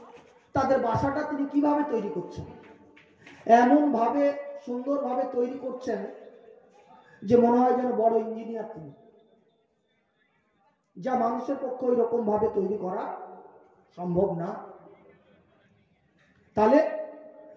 তাদের বাসাটা তিনি কিভাবে তৈরি করছেন। এমন ভাবে সুন্দরভাবে তৈরি করছেন যে মনে হয় যেন বড় ইঞ্জিনিয়ার তিনি, যা মানুষের পক্ষে ওই রকম ভাবে তৈরি করা সম্ভব না। তাহলে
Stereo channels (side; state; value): both; identical; correlation 1.00